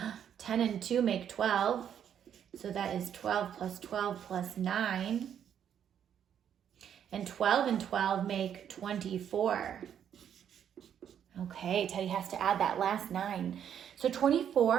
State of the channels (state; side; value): quieter; left; 9.0 dB